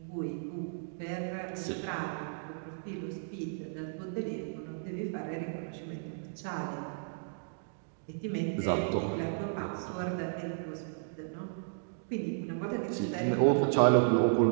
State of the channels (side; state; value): left; silent; digital silence